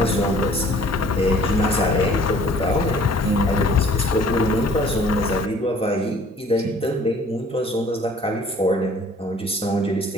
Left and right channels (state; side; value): normal; both; correlation 0.54